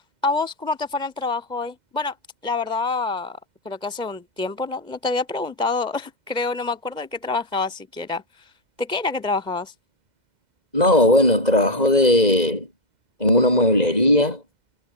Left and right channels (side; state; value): left; late; 2.0 ms